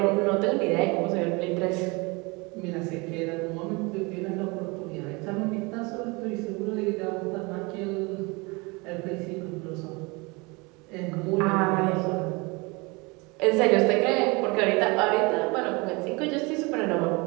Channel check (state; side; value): quieter; left; 26.9 dB